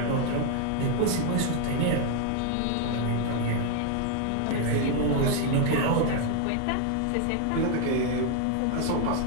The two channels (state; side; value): different; both; correlation 0.01